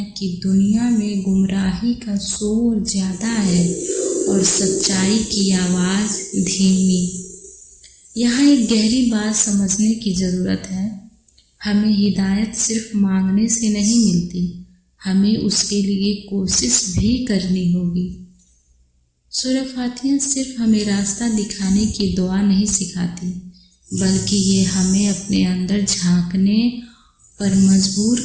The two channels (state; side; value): identical; both; correlation 1.00